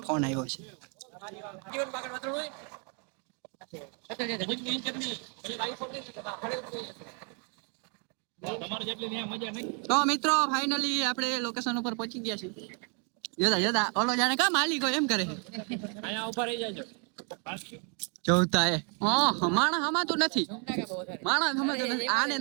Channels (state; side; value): quieter; left; 38.4 dB